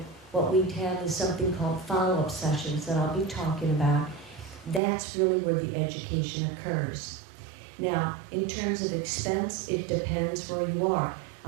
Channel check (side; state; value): left; drops out; at 4.8 s